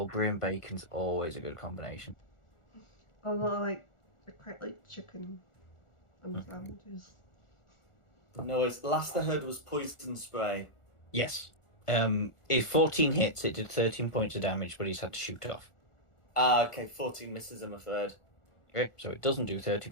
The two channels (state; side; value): late; right; 1.4 ms